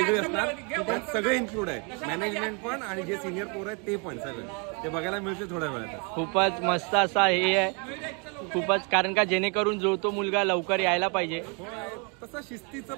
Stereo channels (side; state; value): left; quieter; 34.9 dB